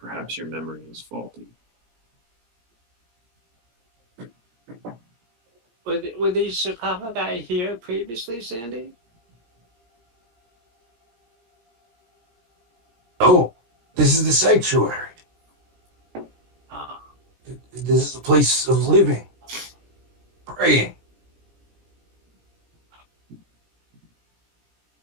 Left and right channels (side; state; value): left; late; 17 ms